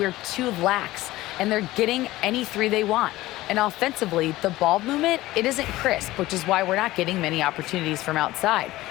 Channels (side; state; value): right; quieter; 17.3 dB